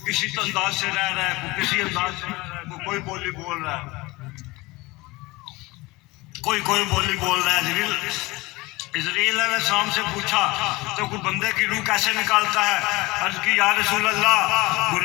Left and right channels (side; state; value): right; quieter; 22.0 dB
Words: کسی انداز سے رہ رہا ہے، کوئی کسی انداز سے رہ رہا ہے، کوئی بولی بول رہا ہے، کوئی بولی بول رہا ہے۔ اسرائیل علیہ السلام سے پوچھا تو کوئی بندے کی روح کیسے نکالتا ہے؟ عرض کی یا رسول اللہ